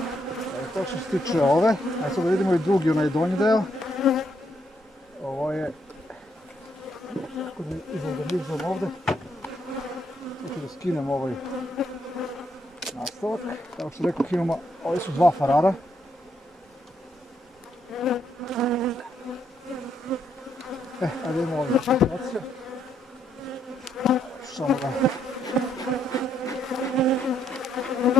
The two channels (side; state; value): both; normal; correlation 0.75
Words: To što se tiče ove. Ajde sad da vidimo i drugi, onaj donji deo. Ovo je... Kako da izorganizam ovdje. Sad ću da skinem ovaj nastavak. Kao što rekao, imamo, ovi su 2 farara. Ajde imamo ovdje situacija. Samo da...